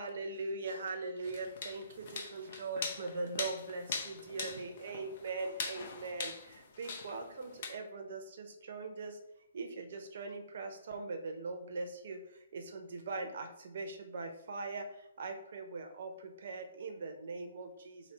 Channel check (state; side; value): inverted; both; correlation -0.65